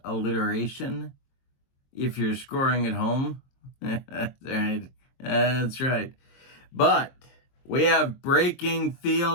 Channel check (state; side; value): late; right; 23 ms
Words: alliteration. If you're scoring at home. That's right. That's right. But we have breaking